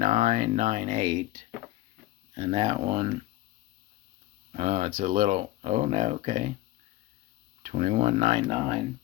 And that one, it's a little, oh no, okay, 21.99.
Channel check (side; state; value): right; quieter; 16.5 dB